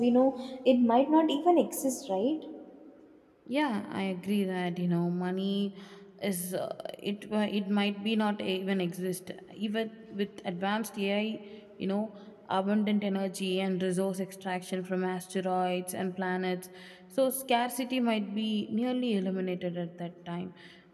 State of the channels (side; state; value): both; identical; correlation 1.00